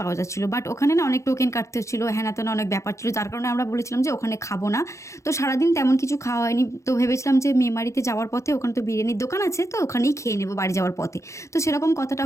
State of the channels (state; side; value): late; right; 0.14 ms